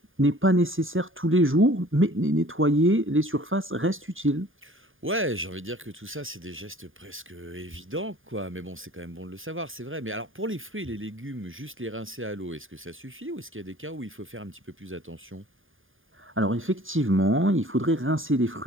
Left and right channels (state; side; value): late; left; 0.59 ms